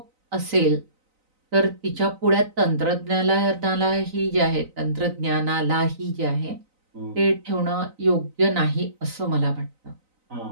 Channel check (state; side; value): late; left; 3.9 ms